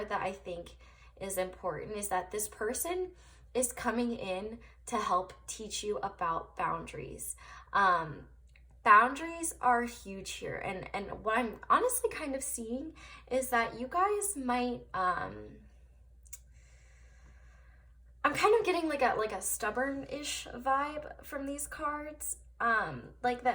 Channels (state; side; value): identical; both; correlation 1.00